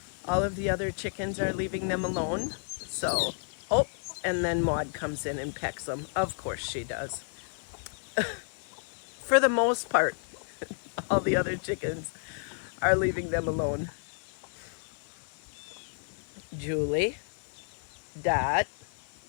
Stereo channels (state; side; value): silent; right; 57 dB below the other